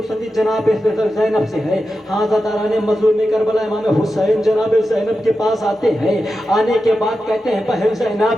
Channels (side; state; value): both; normal; correlation 0.91